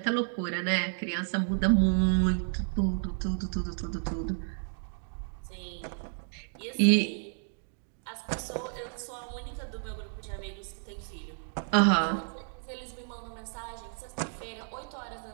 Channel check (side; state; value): left; silent; digital silence